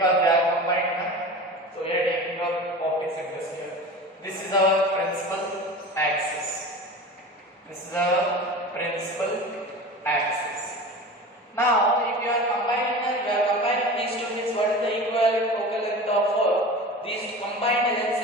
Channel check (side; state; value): both; normal; correlation 0.33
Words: they are combined. So we are taking our optic centers here. This is our principal axis. This is our principal axis. Now, if you are combining these two means what is the equivalent focal length of these combined